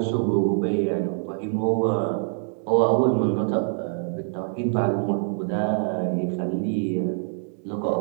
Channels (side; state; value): left; silent; 60 dB below the other